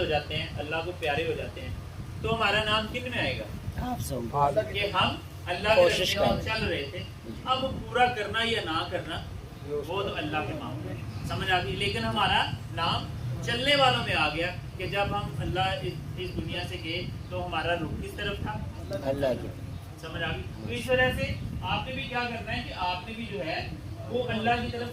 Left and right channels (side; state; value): both; identical; correlation 1.00